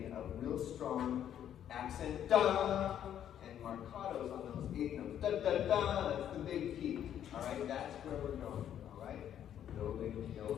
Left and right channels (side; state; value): right; quieter; 10.1 dB